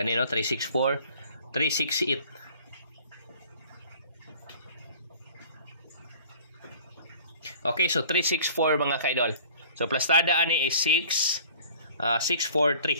364, 368. Okay, so 364 mga kaidol. So plastada ani is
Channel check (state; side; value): inverted; both; correlation -0.49